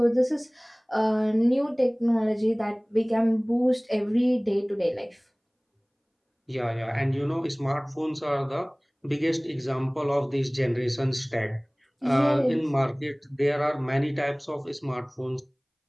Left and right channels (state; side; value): identical; both; correlation 1.00